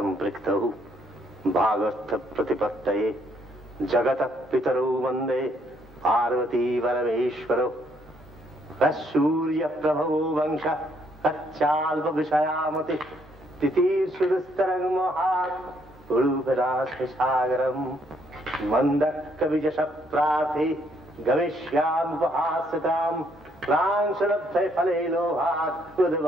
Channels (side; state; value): both; normal; correlation 0.69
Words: भागर्थ प्रतिपत्तये जगतः पितरौ वन्दे पार्वती परमेश्वरौ सूर्य प्रभवो वंश कच्चाल्प विषयामति तितीर्षुस्तरं महात् उडुभिरास्मिसागरं मन्दक्कविजशप्रार्थि गमिष्यामुपहास्यतां प्रांशलब्धे फले लोभात्